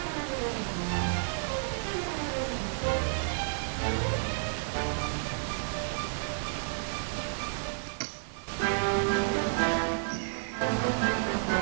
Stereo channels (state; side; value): silent; left; 56 dB below the other